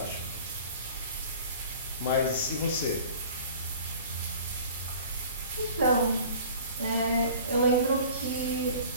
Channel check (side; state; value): both; inverted; correlation -0.45